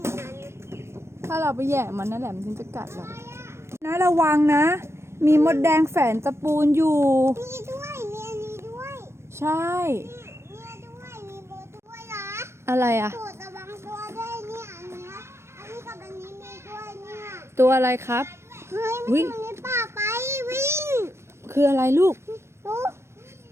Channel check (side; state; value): left; late; 0.13 ms